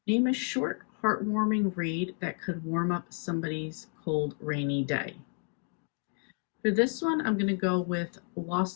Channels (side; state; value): right; quieter; 38.8 dB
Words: Name a short, heartwarming read that could warm up somebody's cold, rainy day. For this one, I'm going to go with